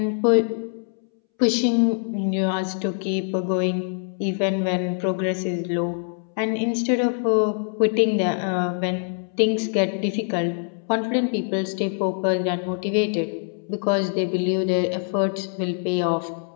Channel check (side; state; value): right; silent; 63 dB below the other